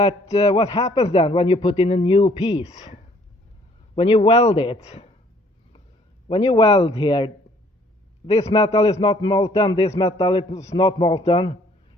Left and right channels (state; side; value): normal; both; correlation 0.60